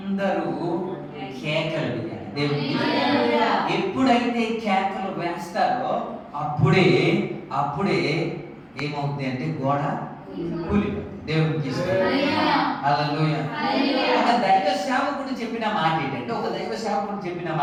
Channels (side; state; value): both; identical; correlation 1.00